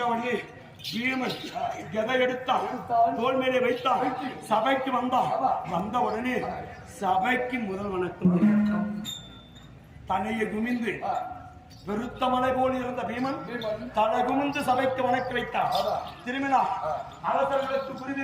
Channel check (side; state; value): both; identical; correlation 1.00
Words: உடனே பீமன் எதை எடுத்தான் தோல் மேலே வைத்தான். சபைக்கு வந்தான். வந்த உடனே சபைக்கு முதல் வணக்கம் தலையை குமிந்து வெறுத்த மலை போல் இருந்த பீமன் தலை குமிந்து சபைக்கு வணக்க வைத்தான். திரும்பினா அரசர்களுக்கு